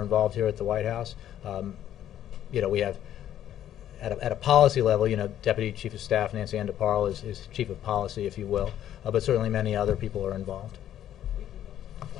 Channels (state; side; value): quieter; right; 11.3 dB